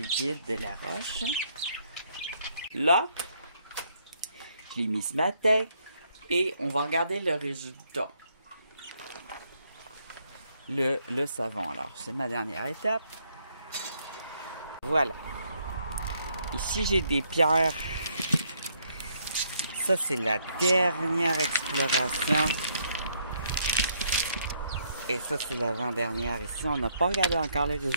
de la roche. Là, je l'ai mis ce matin et on va regarder le résultat. Le savon. Alors, c'est ma dernière étape. Voilà. Ici, j'ai des pierres. Ça, c'est la dernière exploration. Et ça, c'est l'avant-dernière. Ici, on n'a pas regardé encore les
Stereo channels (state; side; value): inverted; both; correlation -0.71